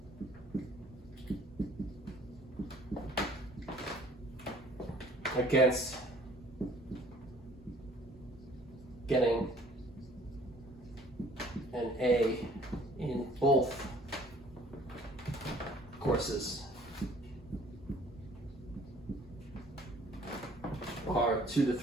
against getting an A in both courses are 2 to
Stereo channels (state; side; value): normal; both; correlation 0.55